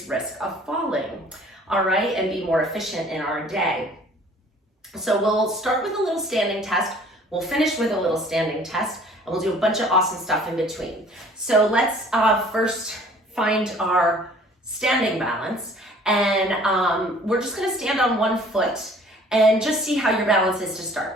risk of falling. All right, and be more efficient in our day. So we'll start with a little standing test, we'll finish with a little standing test, and we'll do a bunch of awesome stuff in between. So let's first find our standing balance, and we're just gonna stand on one foot and just see how your balance is to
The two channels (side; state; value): both; normal; correlation 0.52